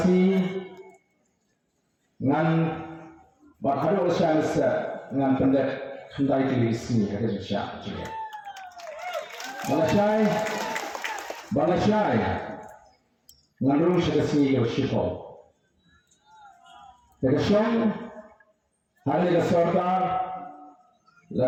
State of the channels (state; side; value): identical; both; correlation 1.00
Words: ngan baharu usaha ngan pendek hendai tulis ni kerja juga. Balasai Nganrung sekasi yoshiko. Tekasong hari ke sarkar